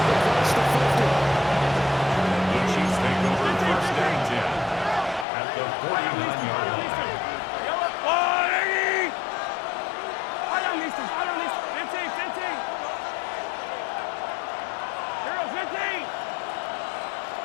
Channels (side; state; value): right; drops out; at 5.2 s